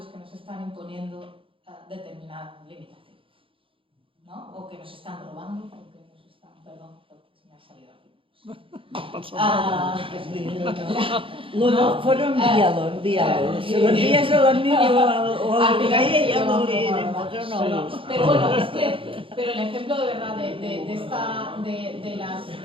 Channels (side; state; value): left; late; 0.26 ms